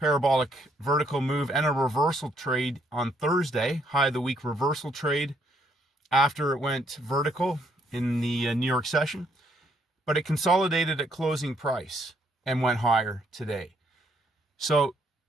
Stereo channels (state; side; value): normal; both; correlation 0.70